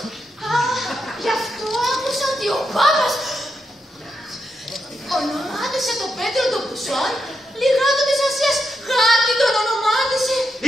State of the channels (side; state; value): both; normal; correlation 0.84